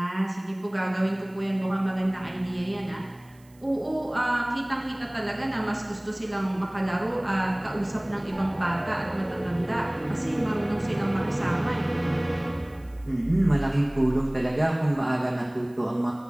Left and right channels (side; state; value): right; noise; hiss, 30 dB below the sound